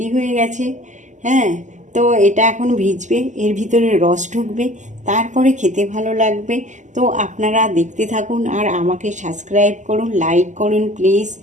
হয়ে গেছে। হ্যাঁ, তো এটা এখন ভিজবে, এর ভিতরে রস ঢুকবে, তারপরে খেতে ভালো লাগবে। তো আপনারা দেখতে থাকুন আর আমাকে সাবস্ক্রাইব করুন, লাইক করুন প্লিজ,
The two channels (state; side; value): late; left; 0.35 ms